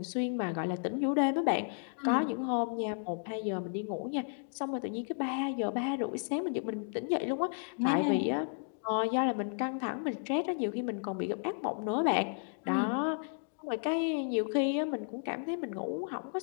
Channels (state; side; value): silent; right; 56 dB below the other